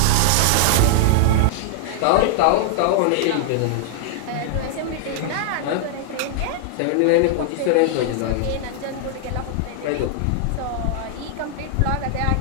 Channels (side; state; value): both; different; correlation -0.01